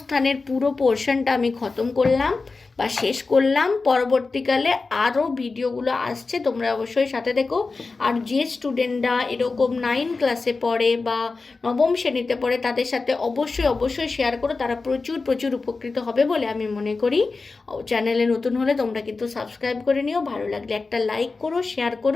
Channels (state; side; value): quieter; right; 4.0 dB